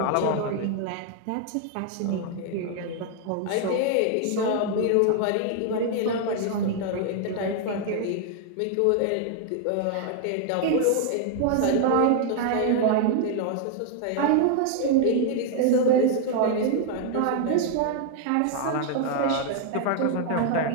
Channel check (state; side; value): different; both; correlation 0.00